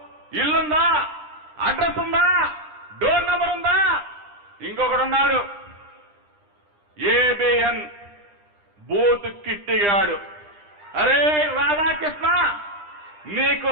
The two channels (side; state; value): left; late; 9.9 ms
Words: ఇల్లుందా, అడ్రస్ ఉందా, డోర్ నంబర్ ఉందా? ఇంకొకడున్నాడు ఏబిఎన్ బూత్ కిట్టిగాడు. అరే రాధాకృష్ణ, నీకు